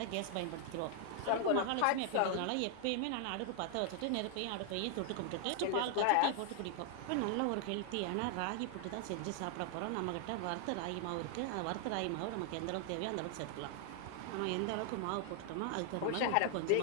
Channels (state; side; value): different; both; correlation 0.00